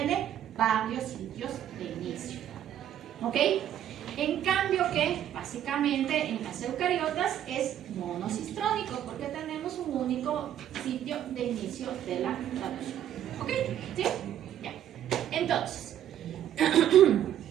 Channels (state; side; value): quieter; left; 10.9 dB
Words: varios sitios de inicio. ¿Ok? En cambio que básicamente en las eucariotas es monocistrónico, porque tenemos un único sitio de inicio de la traducción. ¿Ok? ¿Sí? Ya. Entonces,